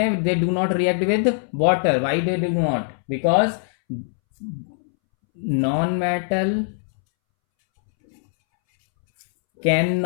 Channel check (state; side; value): silent; right; 64 dB below the other